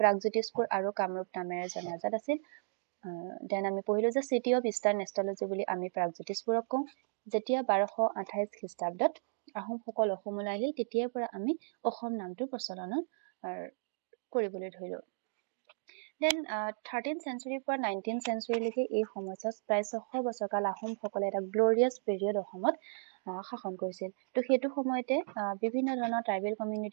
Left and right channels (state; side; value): silent; left; digital silence